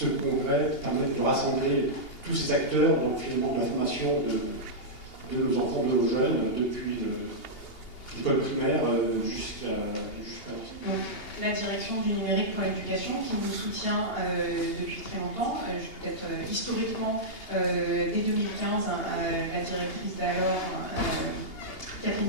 congrès permette de rassembler tous ces acteurs, donc finalement de la formation de nos enfants, de nos jeunes, depuis l'école primaire jusqu'à la direction du numérique pour l'éducation qui vous soutient depuis très longtemps. Peut-être historiquement, dès 2015, la directrice d'alors, Catherine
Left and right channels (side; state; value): right; late; 2.8 ms